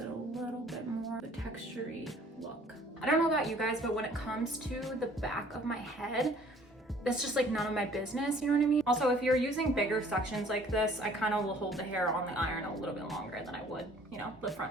a little bit more of a textury look. I don't know about you guys, but when it comes to the back of my head, that's just like none of my business, you know what I mean? Also, if you're using bigger sections like this, I kind of will hold the hair on the iron a little bit longer than I would, you know, the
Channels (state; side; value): normal; both; correlation 0.55